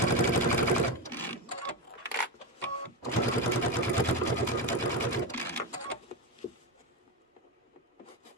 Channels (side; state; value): both; normal; correlation 0.14